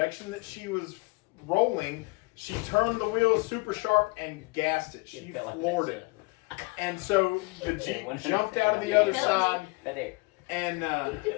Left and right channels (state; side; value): quieter; right; 26.8 dB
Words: that she was rolling, she turned the wheel super sharp and gassed it. She floored it. And so the Jeep jumped out of the other side. Right there. And